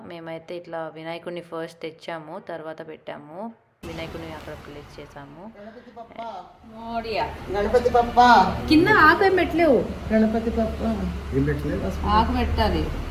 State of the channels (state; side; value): identical; both; correlation 1.00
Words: మేమైతే ఇట్లా వినాయకుడిని ఫస్ట్ తెచ్చాము, తర్వాత పెట్టాము. వినాయకుడిని అక్కడ ప్లేస్ చేసాము. గణపతి పప్ప కింద ఆకు ఏం పెట్టలేవు, గణపతి పప్ప ఆకు పెట్టాలి.